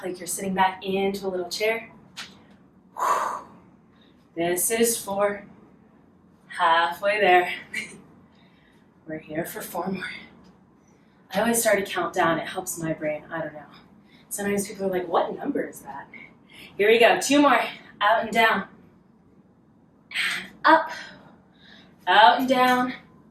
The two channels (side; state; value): both; identical; correlation 1.00